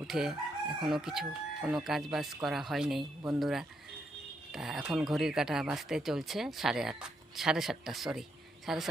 উঠে এখনও কোনো কাজ বাজ করা হয়নি বন্ধুরা। তা এখন ঘড়ির কাঁটা বাজতে চলছে সাড়ে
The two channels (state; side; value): normal; both; correlation 0.78